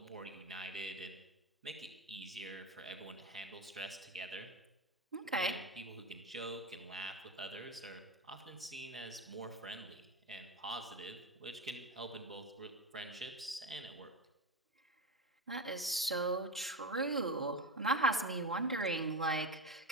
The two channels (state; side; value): normal; both; correlation 0.18